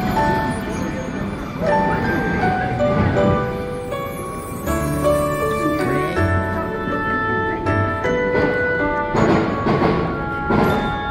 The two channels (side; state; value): both; identical; correlation 1.00